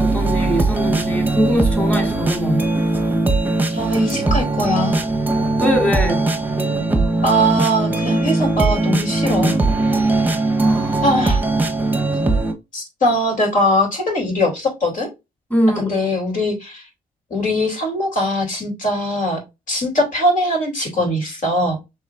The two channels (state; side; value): normal; both; correlation 0.66